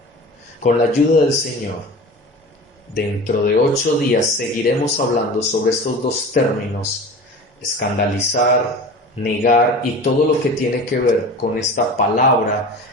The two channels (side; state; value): both; normal; correlation 0.36